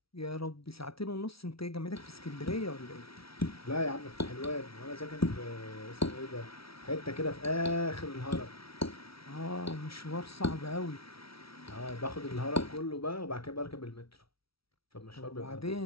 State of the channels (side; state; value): right; late; 0.75 ms